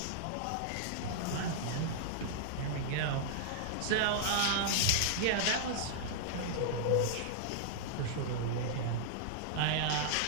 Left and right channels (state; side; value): different; both; correlation -0.01